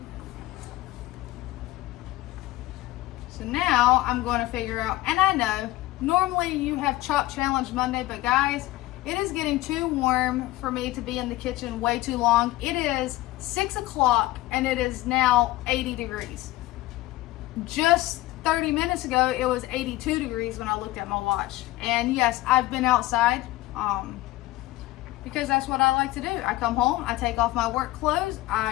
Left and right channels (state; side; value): quieter; right; 17.6 dB